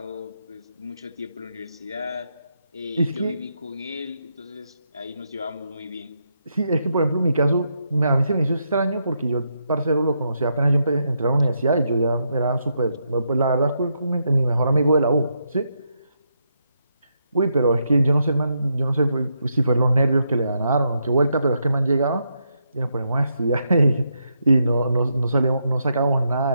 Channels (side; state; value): both; inverted; correlation -0.80